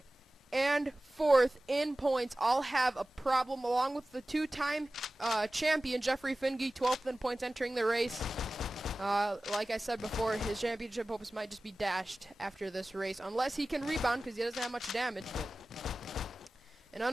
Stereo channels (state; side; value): normal; both; correlation 0.97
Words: and fourth in points all have a problem, along with the two-time champion Jeffrey Finge, 12th in points entering the race. Like I said before, his championship hopes might just be dashed after this race, unless he can rebound because he doesn't have much damage. But an